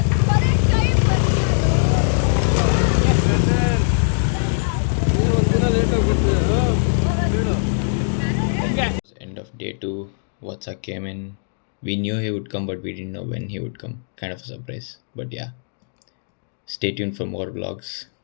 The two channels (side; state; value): right; silent; digital silence